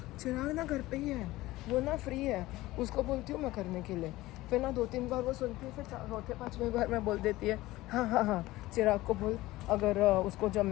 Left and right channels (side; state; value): right; quieter; 18.0 dB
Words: चिराग ना घर पे ही है, वो ना फ्री है, उसको बोलती हूँ मैं करने के लिए। फिर ना 2-3 बार वो सुनती है, फिर 4-5वें बार मैं बोल देती है हाँ चिराग को बोल, अगर उसको